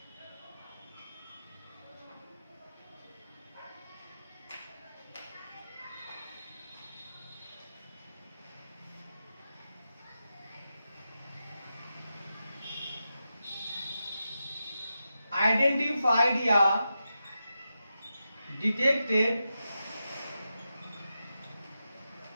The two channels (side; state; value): both; inverted; correlation -0.89